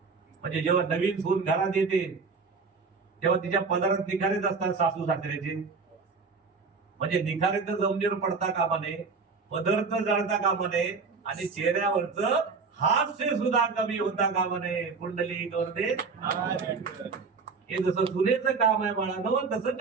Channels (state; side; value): quieter; left; 4.8 dB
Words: म्हणजे जेव्हा नवीन सून घरात येते तेव्हा तिच्या पदरात निखारेच असतात सासू सासऱ्याचे. म्हणजे निखारे तर जमिनीवर पडता कामा नये, पदर तर जळता कामा नये, आणि चेहऱ्यावरचं हास्य सुद्धा कमी होता कामा नये. कुंडली गौरदे, हे जसं सुनेचं काम आहे बाळांनो, तसं